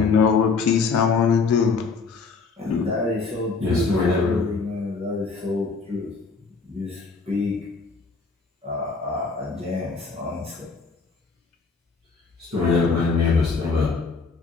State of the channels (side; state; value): right; quieter; 4.6 dB